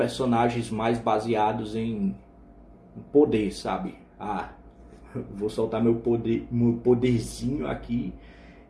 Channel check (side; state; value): both; identical; correlation 1.00